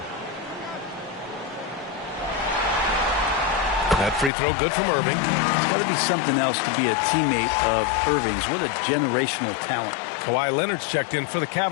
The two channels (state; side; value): drops out; right; at 4.3 s